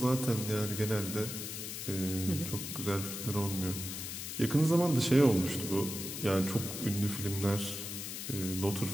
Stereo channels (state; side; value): noise; left; hiss, 6 dB below the sound